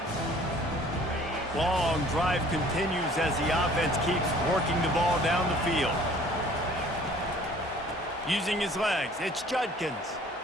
Long drive continues as the offense keeps working the ball down the field. Using his legs, it's Judkins.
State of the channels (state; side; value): normal; both; correlation 0.53